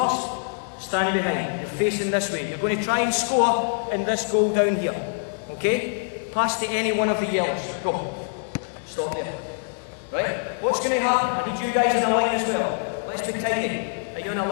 Standing behind. You're facing this way. You're going to try and score in this goal down here. Okay? Pass to any one of the yellows. Go. Stop there. Right? What's going to happen? I need you guys in a line as well. Let's be tidy. Are you in a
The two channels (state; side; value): silent; right; digital silence